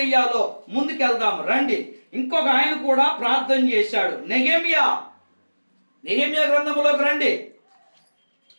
ముందుకెళ్దాం రండి. ఇంకొక ఆయన కూడా ప్రార్థన చేశాడు. నెహెమ్యా గ్రంథములోకి రండి.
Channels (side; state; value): both; inverted; correlation -1.00